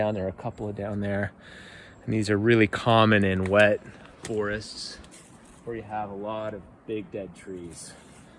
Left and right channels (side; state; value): both; identical; correlation 1.00